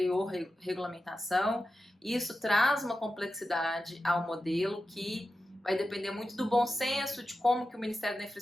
regulamentação. Isso traz uma complexidade ao modelo que vai depender muito do bom senso, de como que o Ministério da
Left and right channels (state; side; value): normal; both; correlation 0.91